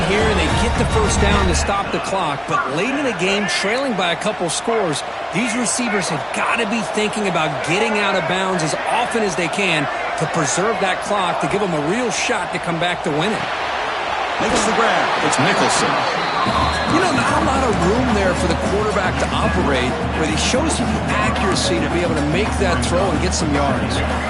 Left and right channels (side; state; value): both; identical; correlation 1.00